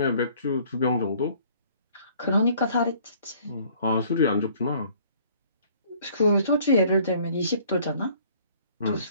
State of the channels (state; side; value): inverted; both; correlation -0.57